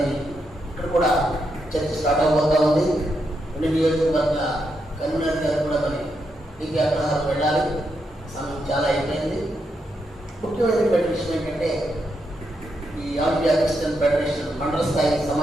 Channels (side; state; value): both; normal; correlation 0.82